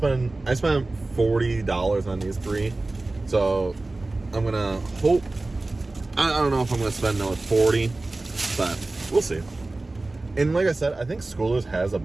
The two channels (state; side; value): quieter; left; 3.1 dB